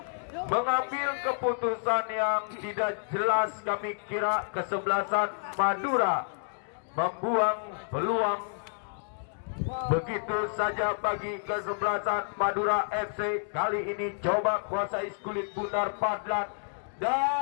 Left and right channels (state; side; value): silent; right; 58 dB below the other